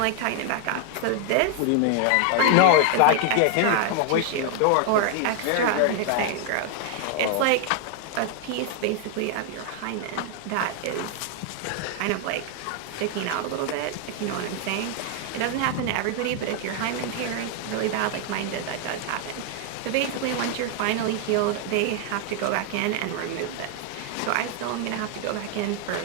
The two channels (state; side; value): different; both; correlation 0.00